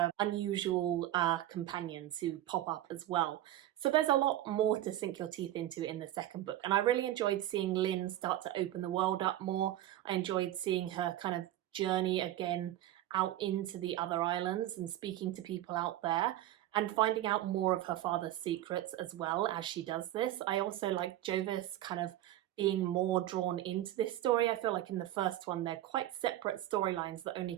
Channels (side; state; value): left; quieter; 13.7 dB